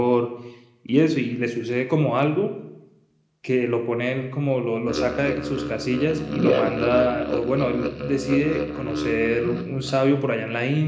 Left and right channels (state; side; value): identical; both; correlation 1.00